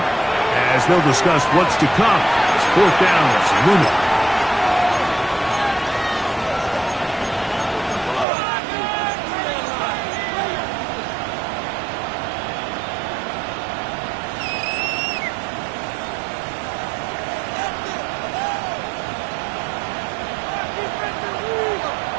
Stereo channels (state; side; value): drops out; left; at 8.2 s